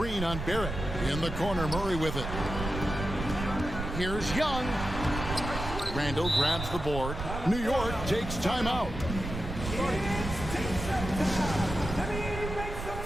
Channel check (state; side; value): noise; right; rumble, 6 dB below the sound